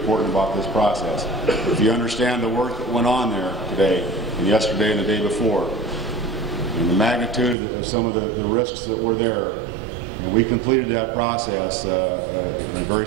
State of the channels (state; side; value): drops out; left; at 7.6 s